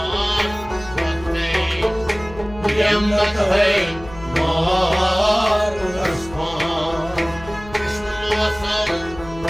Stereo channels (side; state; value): left; noise; hum, 17 dB below the sound